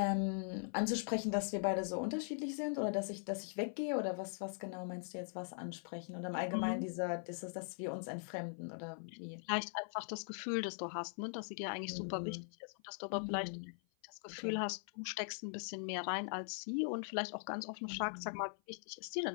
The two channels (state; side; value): silent; right; 50 dB below the other